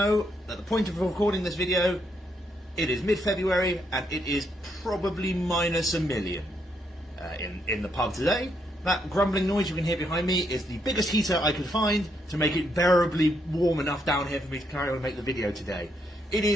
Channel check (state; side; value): normal; both; correlation 0.76